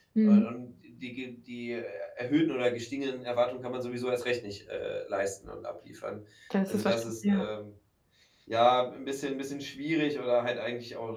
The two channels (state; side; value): identical; both; correlation 1.00